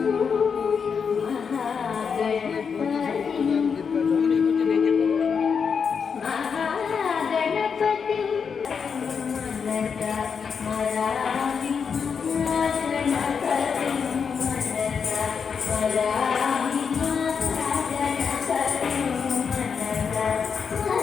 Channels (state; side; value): quieter; right; 6.2 dB